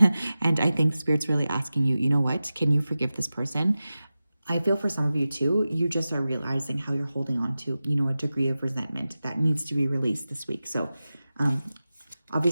And I think Spirit's really asking you, you know what, can you forgive this person? I feel for some of you too, you just are realizing how you're holding on to, you know, a degree of resentment that needs to be released this week. So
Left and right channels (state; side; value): inverted; both; correlation -0.95